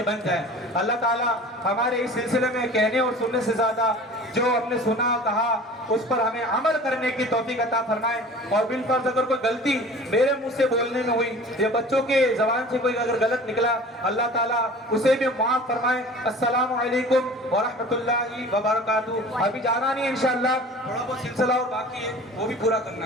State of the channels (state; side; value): normal; both; correlation 0.42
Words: بن جائیں. اللہ تعالیٰ ہمارے اس سلسلے میں کہنے اور سننے سے زیادہ جو ہم نے سنا کہا اس پر ہمیں عمل کرنے کی توفیق عطا فرمائے. اور بالفرض اگر کوئی غلطی میرے منہ سے بولنے میں ہوئی یا بچوں کے زبان سے کوئی اگر غلط نکلا اللہ تعالیٰ اسے بھی معاف فرمائے. السلام علیکم ورحمۃ اللہ وبرکاتہ. ابھی جانا نہیں انشاءاللہ، تھوڑا بہت سلسلہ اور باقی ہے وہ بھی پورا کرنا